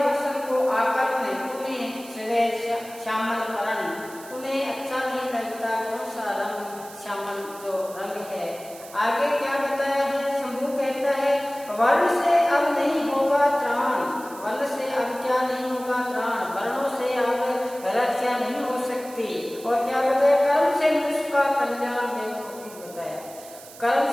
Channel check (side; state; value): right; noise; hiss, 18 dB below the sound